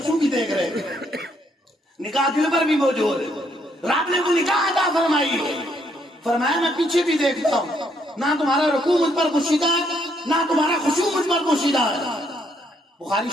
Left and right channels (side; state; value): both; normal; correlation 0.72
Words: بھی دیکھ رہے ہیں. نگاہ دل پر بھی موجود ہے. رب نے وہ نگاہ عطا فرمائی ہے. فرمایا میں پیچھے بھی دیکھتا ہوں، نہ تمہارا رکوع مجھ پر پوشیدہ ہے نہ تمہارا خشوع مجھ پر پوشیدہ ہے. بخاری